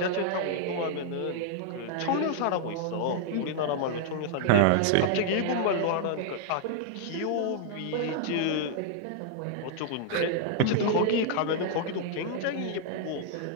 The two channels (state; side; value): different; both; correlation -0.01